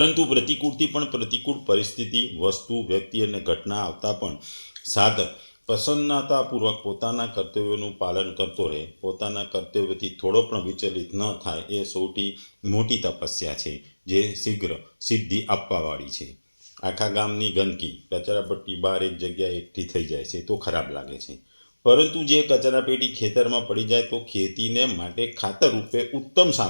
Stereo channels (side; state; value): both; inverted; correlation -1.00